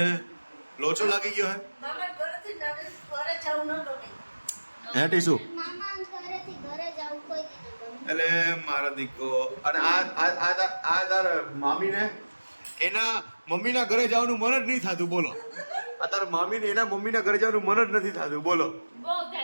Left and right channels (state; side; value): inverted; both; correlation -1.00